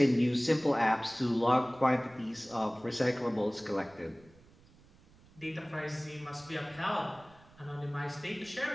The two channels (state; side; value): noise; right; rumble, 26 dB below the sound